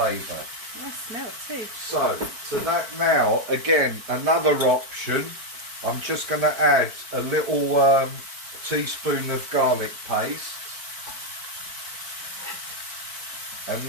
Nice smell too. So to that now, again, another option, I'm just going to add a little teaspoon of garlic paste. And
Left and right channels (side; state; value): left; late; 4.5 ms